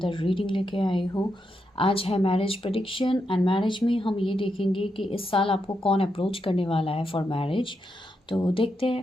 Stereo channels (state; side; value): normal; both; correlation 0.83